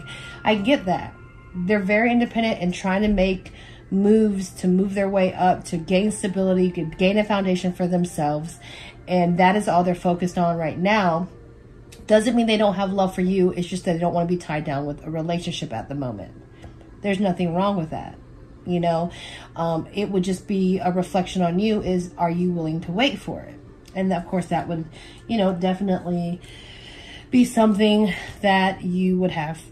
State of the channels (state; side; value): identical; both; correlation 1.00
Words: I get that. They're very independent and trying to make moves to move their way up, to gain stability, to gain a foundation for themselves. And that is all they're focused on right now. Doesn't mean they don't have love for you. It's just that they don't want to be tied down with a relationship at the moment. There's nothing wrong with that. You know, it would just be a reflection on you is, are you willing to wait for it? And of course that would, you know, definitely be something that you would have